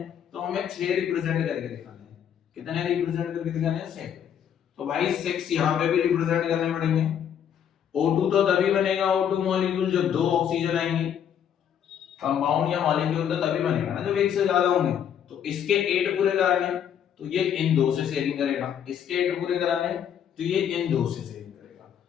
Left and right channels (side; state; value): right; quieter; 8.9 dB